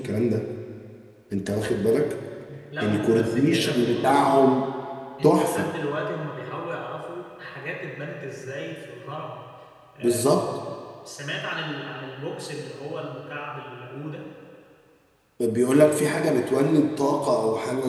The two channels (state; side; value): identical; both; correlation 1.00